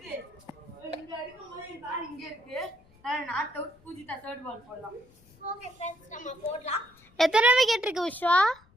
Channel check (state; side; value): noise; left; rumble, 29 dB below the sound